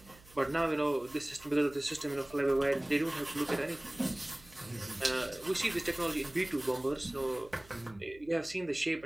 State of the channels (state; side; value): noise; right; hum, 24 dB below the sound